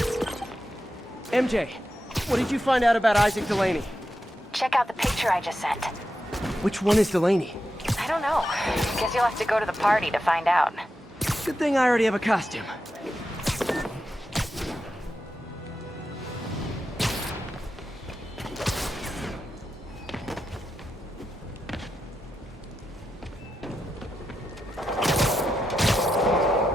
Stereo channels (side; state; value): both; normal; correlation 0.88